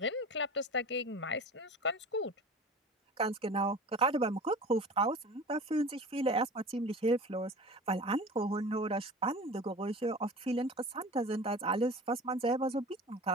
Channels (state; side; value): normal; both; correlation 0.37